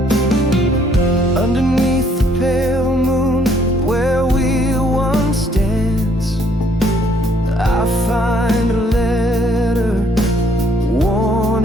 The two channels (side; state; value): both; normal; correlation 0.65